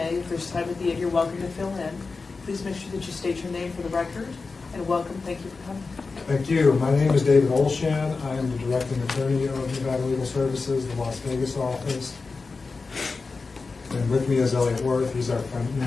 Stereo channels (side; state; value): right; quieter; 4.2 dB